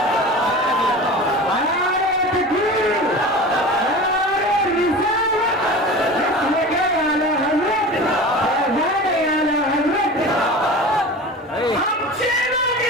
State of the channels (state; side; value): normal; both; correlation 0.34